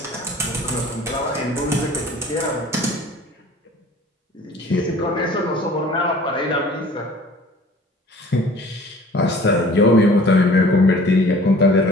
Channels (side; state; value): both; normal; correlation 0.48